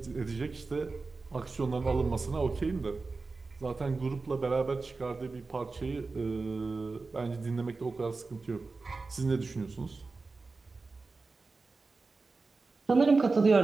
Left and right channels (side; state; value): left; quieter; 3.9 dB